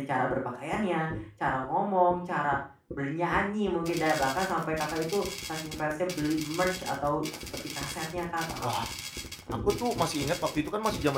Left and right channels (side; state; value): both; identical; correlation 1.00